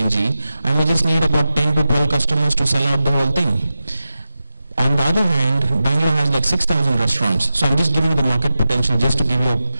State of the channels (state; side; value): inverted; both; correlation -0.93